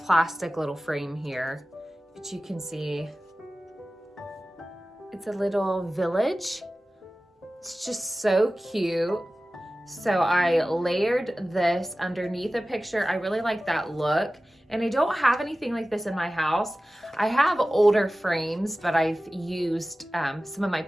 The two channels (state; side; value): normal; both; correlation 0.96